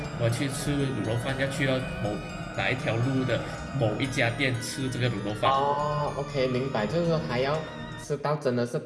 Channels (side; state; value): both; identical; correlation 1.00